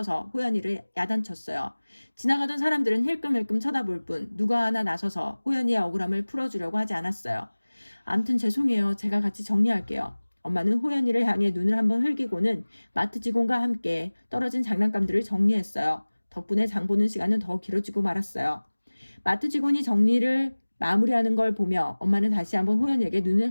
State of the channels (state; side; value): inverted; both; correlation -1.00